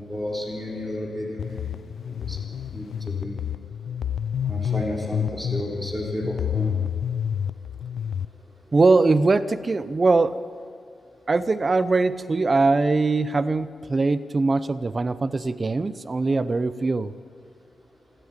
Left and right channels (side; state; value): both; normal; correlation 0.90